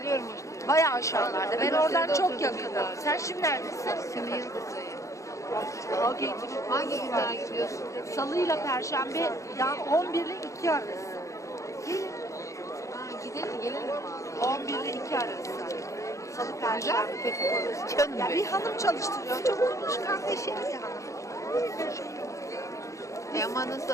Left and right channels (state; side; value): late; right; 0.15 ms